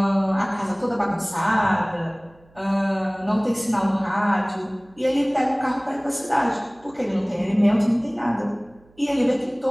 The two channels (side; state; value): right; noise; hum, 30 dB below the sound